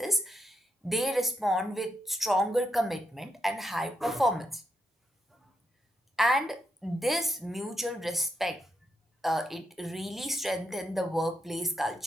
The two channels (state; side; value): normal; both; correlation 0.82